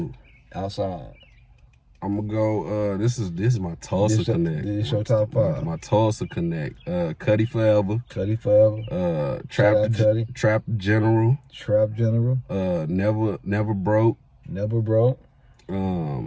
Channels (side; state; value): both; identical; correlation 1.00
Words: Outside. I'm gonna go. This is my Tulsa Connect. This is your top 5. My Tulsa Connect. Cuddy Forever. Trap General. Never Broke.